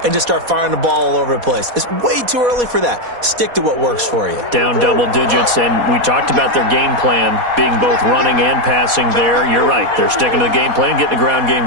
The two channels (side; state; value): left; late; 4.1 ms